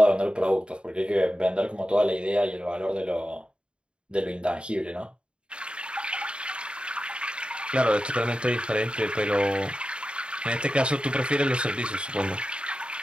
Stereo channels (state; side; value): late; left; 0.054 ms